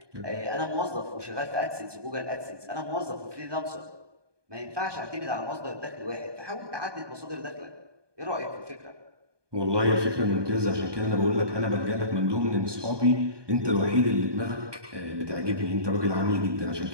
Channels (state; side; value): late; left; 1.2 ms